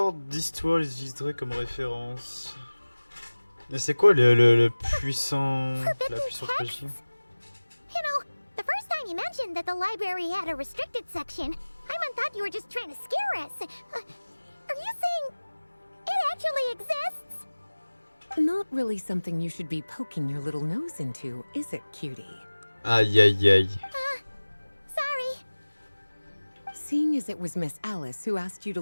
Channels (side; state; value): both; inverted; correlation -1.00